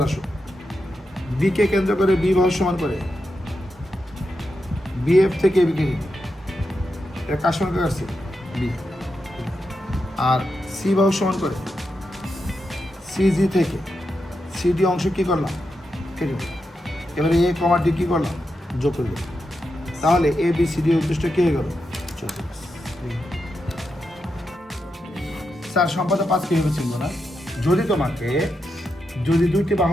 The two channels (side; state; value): both; normal; correlation 0.86